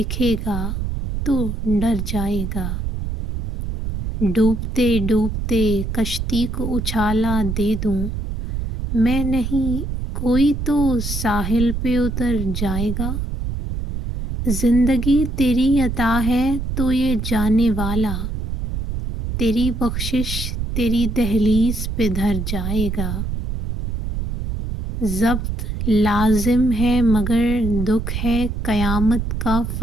گا تو ڈر جائے گا۔ ڈوبتے ڈوبتے کشتی کو اچھالا دے دوں میں نہیں، کوئی تو ساحل پہ اتر جائے گا۔ زندگی تیری عطا ہے تو یہ جانے والا، تیری بخشش تیری دہلیز پہ دھر جائے گا۔ ضبط لازم ہے مگر دکھ ہے قیامت کا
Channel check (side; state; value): right; noise; rumble, 3 dB below the sound